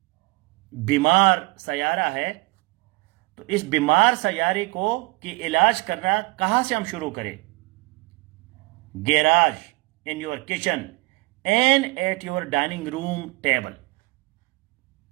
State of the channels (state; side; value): quieter; left; 23.9 dB